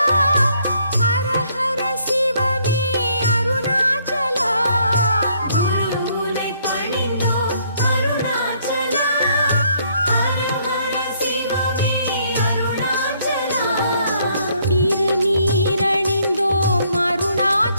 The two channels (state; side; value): inverted; both; correlation -0.67